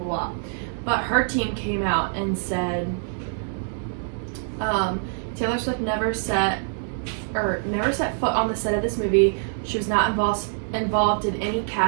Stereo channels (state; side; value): silent; left; digital silence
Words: But her team came out and said, Taylor Swift never set foot on the set of this movie. She was not involved in any